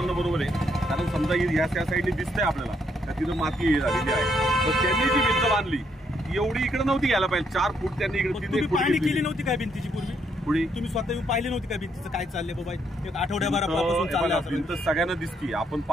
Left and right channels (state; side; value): normal; both; correlation 0.73